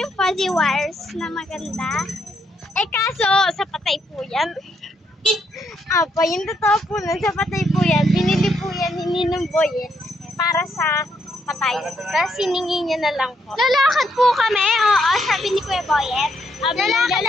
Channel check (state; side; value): normal; both; correlation 0.76